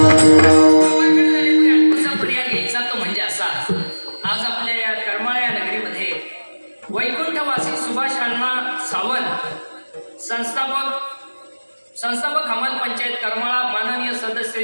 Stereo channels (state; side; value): inverted; both; correlation -1.00